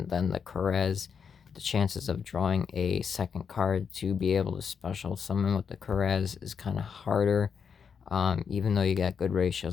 than the Karez. The chances of drawing a second card to be able to special summon with the Karez is kind of harder, even though you got good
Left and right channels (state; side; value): quieter; right; 6.6 dB